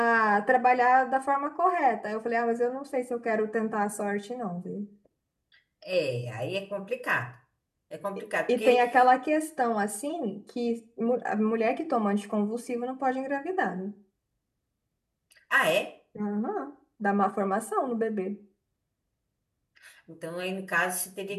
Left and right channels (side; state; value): both; identical; correlation 1.00